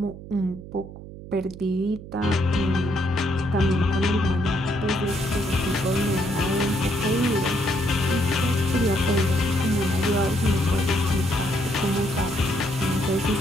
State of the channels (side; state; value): right; noise; hum, 14 dB below the sound